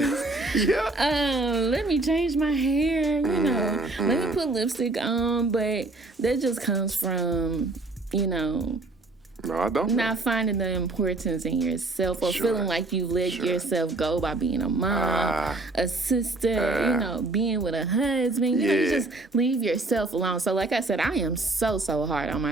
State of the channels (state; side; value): quieter; left; 3.1 dB